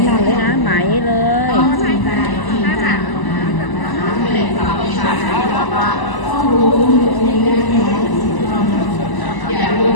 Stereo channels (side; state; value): right; late; 1.0 ms